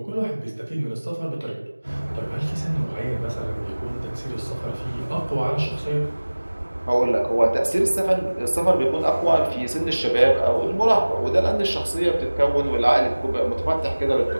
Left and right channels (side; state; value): both; inverted; correlation -1.00